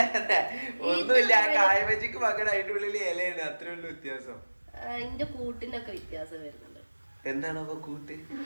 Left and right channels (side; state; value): both; inverted; correlation -1.00